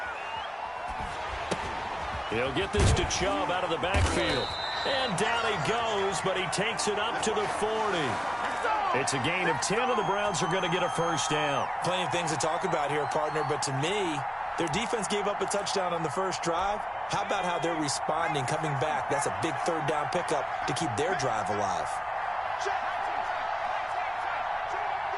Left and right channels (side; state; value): both; identical; correlation 1.00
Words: He'll get this to Chubb out of the backfield. And down he goes, but he takes it up to the 40. It's a gain of 10, and the Browns are going to get a first down. Plenty of things to talk about here, partner, but to me, their defense gave up a touchdown on the first drive. How about how they're responding, coming back? That's a big 3rd down pickup to keep their drive alive.